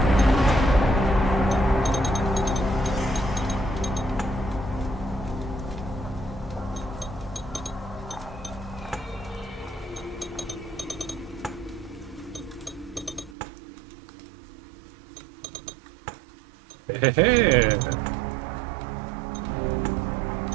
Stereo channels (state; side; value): drops out; left; at 13.4 s